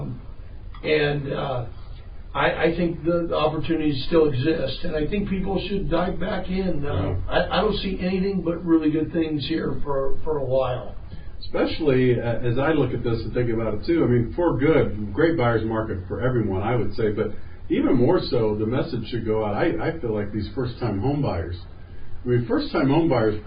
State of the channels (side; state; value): both; identical; correlation 1.00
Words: and I think the opportunities still exist, and I think people should dive back in. I don't see anything but really good things here for a while. Especially as I look at this and think about it too. I mean, for good, great buyer's market for everyone, I would say, but even more so, the message should go out. I feel like these first-time home buyers. I mean, first-time home buyers,